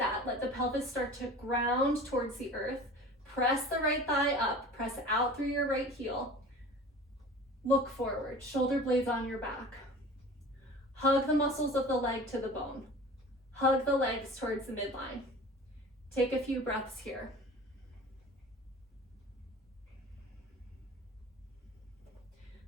Let the pelvis start to ground towards the earth. Press the right thigh up. Press out through your right heel. Look forward. Shoulder blades on your back. Hug the muscles of the leg to the bone. Hug the legs towards the midline. Take a few breaths here.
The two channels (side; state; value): both; normal; correlation 0.40